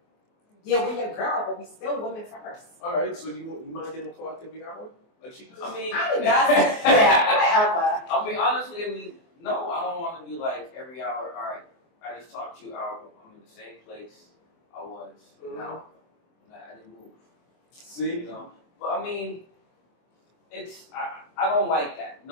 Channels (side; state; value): right; late; 24 ms